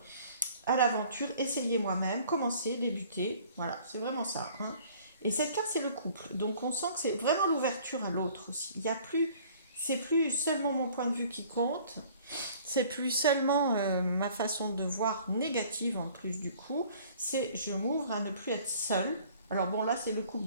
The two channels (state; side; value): inverted; both; correlation -0.53